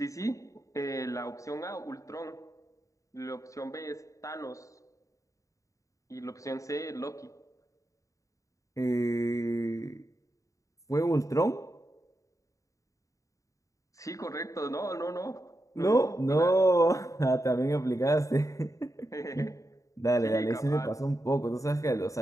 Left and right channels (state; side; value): late; right; 0.16 ms